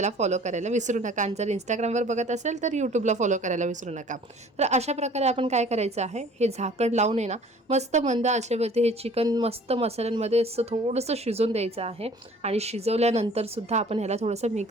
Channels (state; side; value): normal; both; correlation 0.51